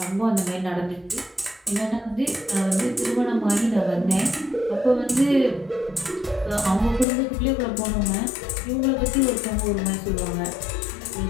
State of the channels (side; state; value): right; drops out; at 7.1 s